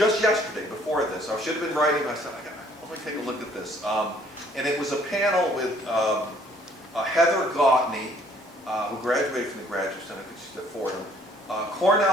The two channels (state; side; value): normal; both; correlation 0.60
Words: yesterday before this. I should have been writing, I said, let me take a look at this. And it was a panel with Heather Gautney, who graduated from the Graduate Center, I think she's at Fordham,